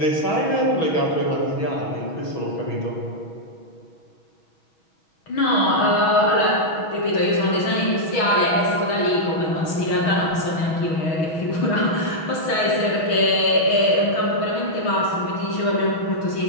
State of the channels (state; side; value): late; right; 6.3 ms